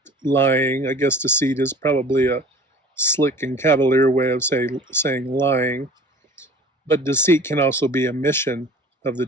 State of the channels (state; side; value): normal; both; correlation 0.44